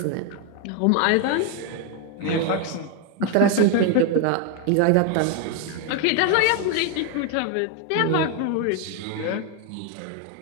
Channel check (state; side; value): different; both; correlation 0.01